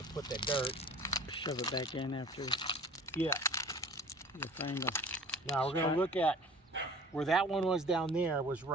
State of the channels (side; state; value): both; normal; correlation 0.45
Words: put that dirt. Shove it back in after Yeah. you find them. Now we're gonna look at where that one was down there was